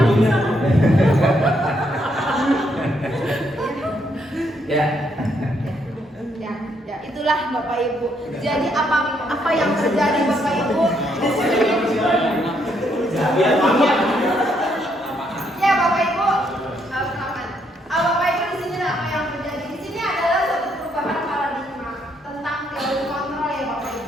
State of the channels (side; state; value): both; normal; correlation 0.74